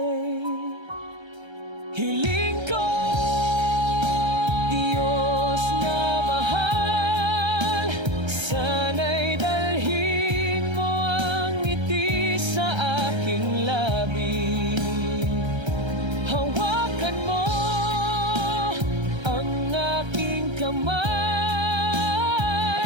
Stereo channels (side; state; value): left; late; 1.3 ms